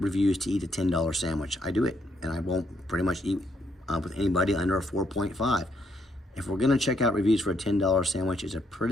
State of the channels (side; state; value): both; normal; correlation 0.74